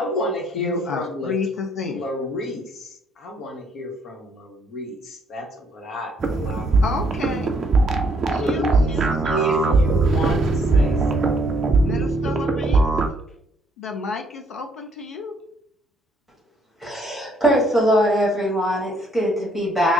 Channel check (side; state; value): both; normal; correlation 0.68